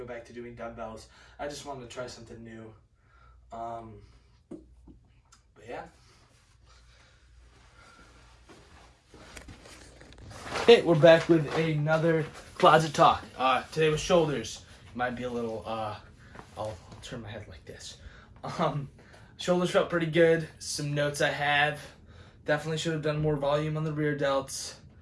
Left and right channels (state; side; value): identical; both; correlation 1.00